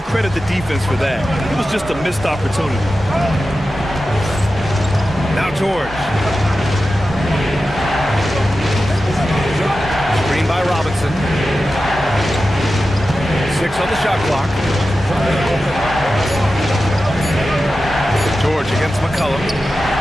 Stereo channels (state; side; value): normal; both; correlation 0.93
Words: credit the defense for that. It was just a missed opportunity. Now George. Screen by Robinson. 6 on the shot clock. George against McCollum.